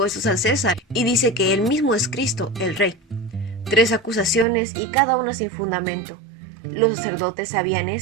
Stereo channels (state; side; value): drops out; left; at 4.5 s